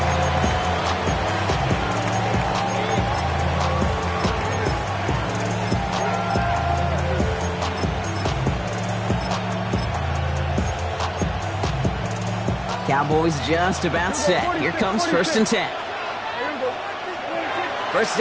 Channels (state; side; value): identical; both; correlation 1.00